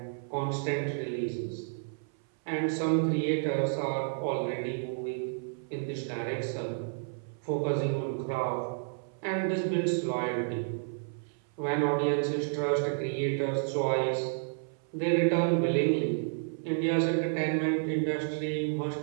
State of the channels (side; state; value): left; silent; 57 dB below the other